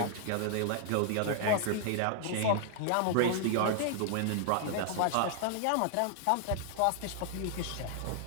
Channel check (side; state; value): both; different; correlation 0.00